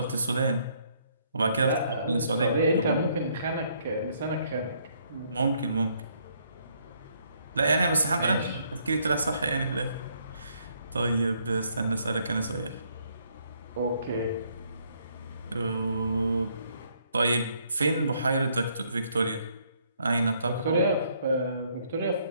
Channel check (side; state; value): both; inverted; correlation -0.69